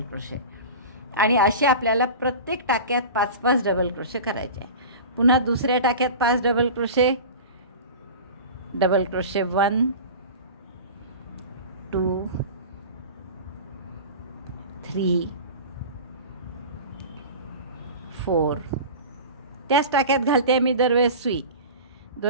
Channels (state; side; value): inverted; both; correlation -0.33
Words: क्रोशे आणि असे आपल्याला प्रत्येक टाक्यात 5-5 डबल क्रोशे करायचे आहे. पुन्हा दुसऱ्या टाक्यात 5 डबल क्रोशे, डबल क्रोशे 1 2 3 4. त्याच टाक्यात घालते मी दरवेळेस सुई.